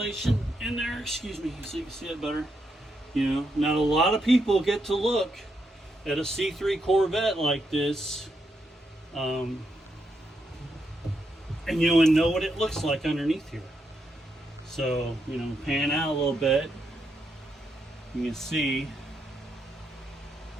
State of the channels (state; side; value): normal; both; correlation 0.81